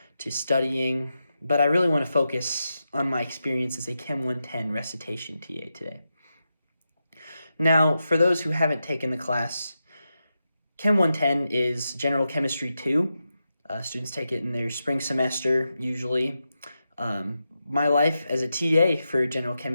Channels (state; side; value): inverted; both; correlation -0.88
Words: to studying, but I really want to focus on my experience as a Chem 110 recitation TA today. Now, for those who haven't taken the class, Chem 110 is General Chemistry 2. Students take it in their spring semester, usually. My life as a TA for General